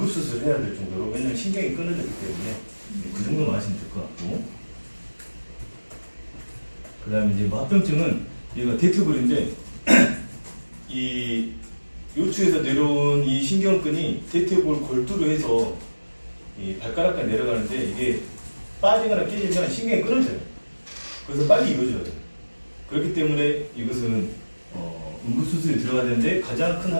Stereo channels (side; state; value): both; inverted; correlation -1.00